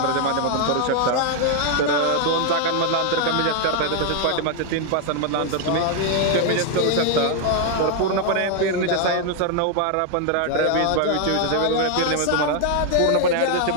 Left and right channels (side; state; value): both; different; correlation 0.00